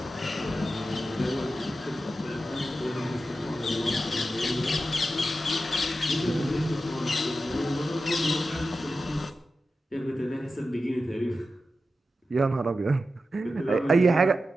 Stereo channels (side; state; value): both; normal; correlation 0.91